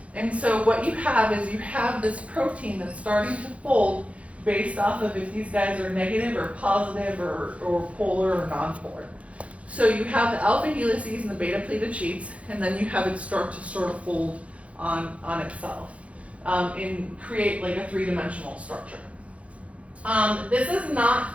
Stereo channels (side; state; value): left; late; 0.064 ms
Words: And so what you have is you have this protein that's starting to fold based off of if these guys are negative or positive or polar or nonpolar. So you have the alpha helices and the beta pleated sheets, and then you have it start to sort of fold on itself and create like a three-dimensional structure. This is